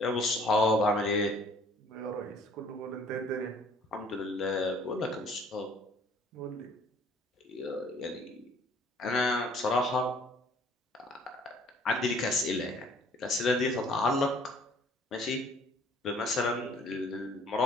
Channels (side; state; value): both; normal; correlation 0.56